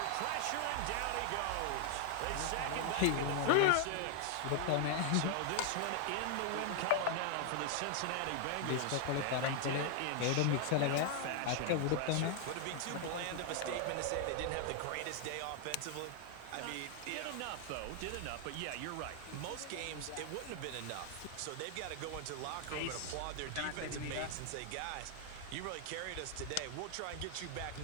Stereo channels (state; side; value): different; both; correlation 0.00